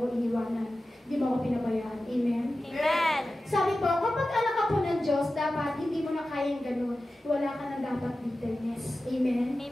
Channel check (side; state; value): both; normal; correlation 0.94